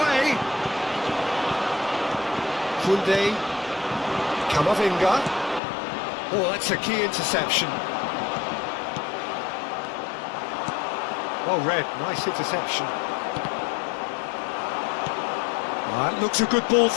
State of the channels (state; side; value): drops out; right; at 5.6 s